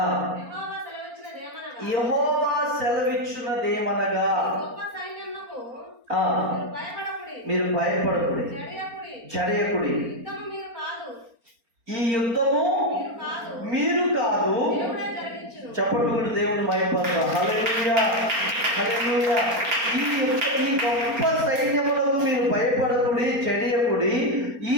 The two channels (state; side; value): late; left; 4.3 ms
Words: యెహోవా సెలవిచ్చున్నదేమనగా మీరు భయపడకుడి, జడియకుడి. ఈ యుద్ధము మీరు కాదు. చెప్పండి కూడా దేవుడు భయపడతారు. హల్లెలూయా, హల్లెలూయా. ఈ గొప్ప సైన్యములకు మీరు భయపడకుడి, చెడియకుడి. ఈ